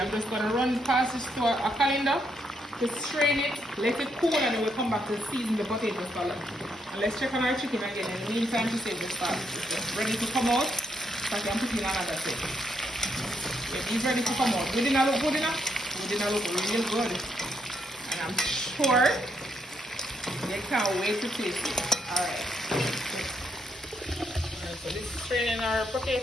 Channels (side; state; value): both; normal; correlation 0.77